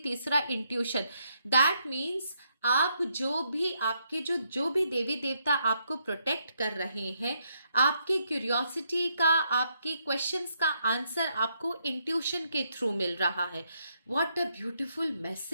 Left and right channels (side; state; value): both; inverted; correlation -0.76